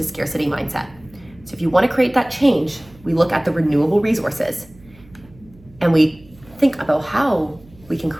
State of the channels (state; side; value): noise; right; hum, 25 dB below the sound